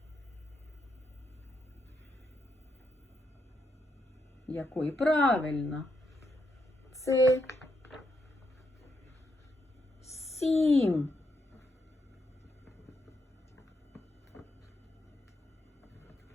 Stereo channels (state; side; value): normal; both; correlation 0.80